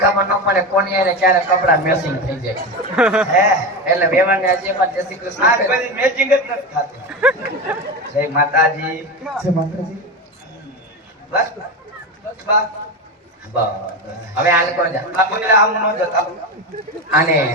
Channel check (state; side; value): normal; both; correlation 0.20